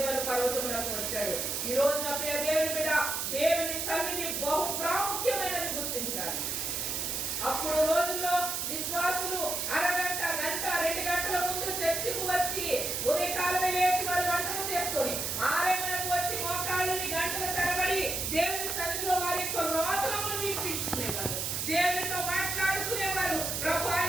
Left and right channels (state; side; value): noise; right; hiss, 1 dB below the sound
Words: పర్వతమునకు వచ్చాడు. ఈ రోజున ప్రియ దేవుని బిడ్డ, దేవుని సన్నిధి బహు ప్రాముఖ్యమైనది గుర్తించాలి. అప్పుడు రోజుల్లో విశ్వాసులు అరగంట, గంట, 2 గంటల ముందు చర్చికి వచ్చి ఉదయకాలమే లేచి వారు వంటలు చేసుకొని 6 వచ్చి మోకాళ్ళని గంటల తరబడి దేవుని సన్నిధిలో వారి యొక్క రోదనములు వినిపించుకునేవారు, దేవునితో మాట్లాడుకునేవారు. ప్రభు,